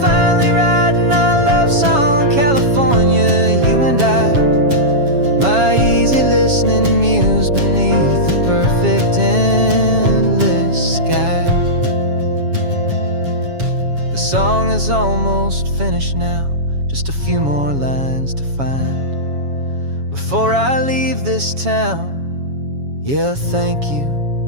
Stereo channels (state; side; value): late; left; 7.2 ms